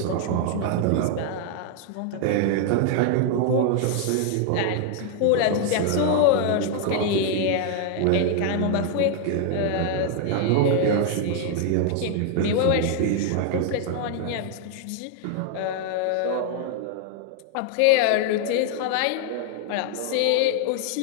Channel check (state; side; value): different; both; correlation 0.00